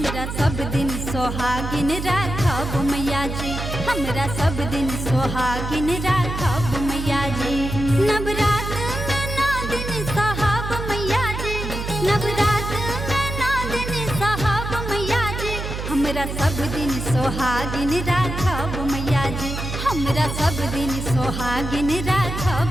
हमरा सब दिन सोहागिन राखब मैया जी, हमरा सब दिन सोहागिन राखब मैया जी। नवरात में 9 दिन सहब मैया जी, नवरात में 9 दिन सहब मैया जी, हमरा सब दिन सोहागिन राखब मैया जी, हमरा सब दिन सोहागिन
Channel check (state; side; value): noise; right; hum, 5 dB below the sound